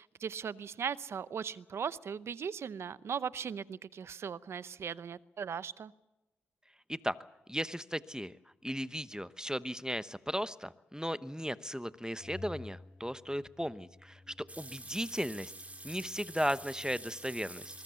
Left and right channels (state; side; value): normal; both; correlation 0.79